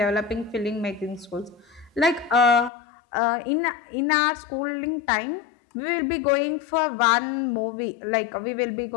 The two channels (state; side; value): drops out; right; at 2.7 s